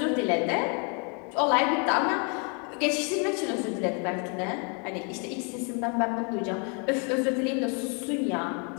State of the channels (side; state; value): right; quieter; 36.8 dB